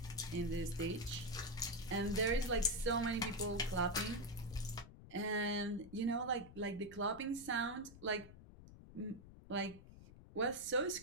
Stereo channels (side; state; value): left; noise; rumble, 17 dB below the sound